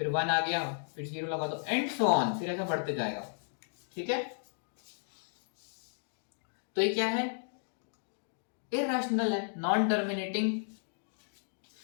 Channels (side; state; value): right; silent; digital silence